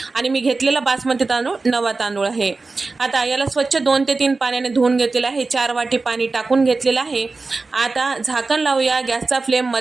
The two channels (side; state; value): left; quieter; 3.8 dB